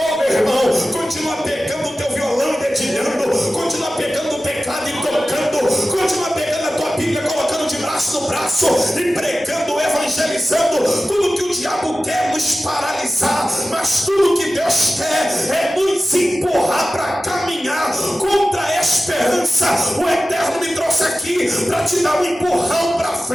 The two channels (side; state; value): both; normal; correlation 0.95